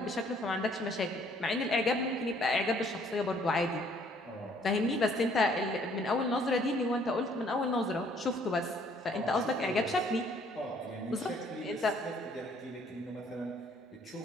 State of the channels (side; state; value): both; normal; correlation 0.62